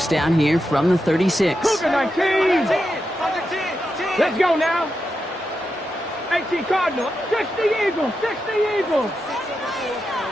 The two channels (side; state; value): both; normal; correlation 0.87